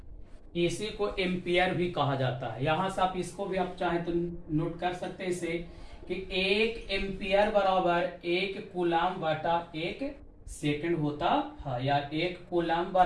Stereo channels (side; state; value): both; identical; correlation 1.00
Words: इसी को एम्पियर भी कहा जाता है। यहां से आप इसको भी आप चाहें तो नोट कर सकते हैं इसे कि 1 एम्पियर बराबर 1 कूलम्ब बटा 1 सेकंड होता है, या 1 कूलम्ब